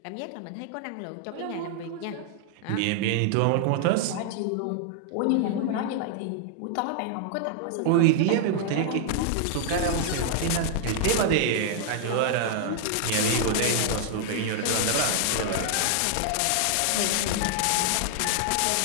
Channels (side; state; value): both; different; correlation 0.00